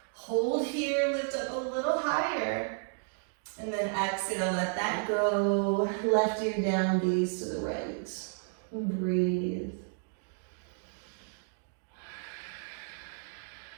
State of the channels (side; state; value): left; silent; 56 dB below the other